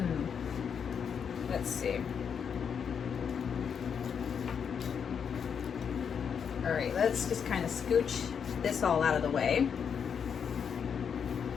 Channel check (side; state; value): right; quieter; 7.1 dB